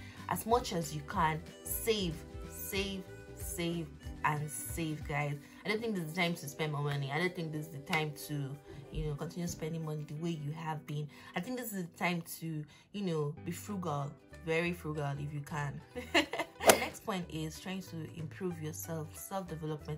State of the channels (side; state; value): both; identical; correlation 1.00